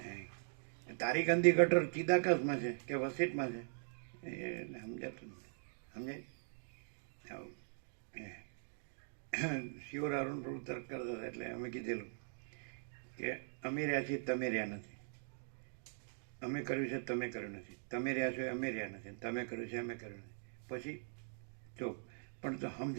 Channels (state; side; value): silent; left; digital silence